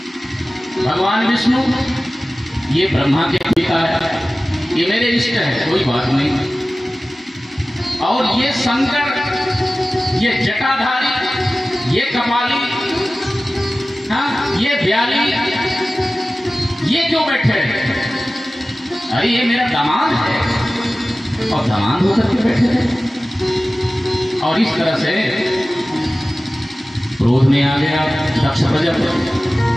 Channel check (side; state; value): both; normal; correlation 0.96